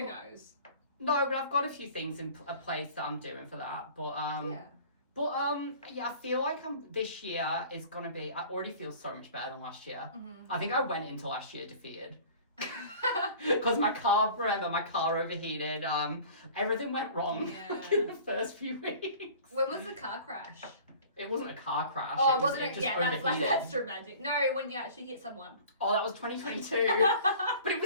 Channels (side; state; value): both; inverted; correlation -0.45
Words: knows? No, but I've got a few things in a place that I'm doing for that. But yeah, I feel like this year is gonna be. I already feel so much better than last year. I think I went into last year defeated. Because my car overheated. Everything went wrong in the first few weeks. When was the car crash? It wasn't a car crash. Oh, it wasn't. It just overheated. That's dramatic. No, when you actually hit someone. Oh, that was 2022. But it